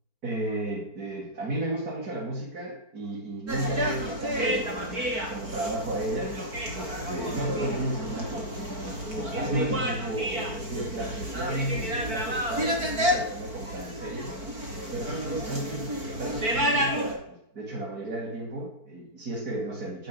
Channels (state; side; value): late; left; 4.5 ms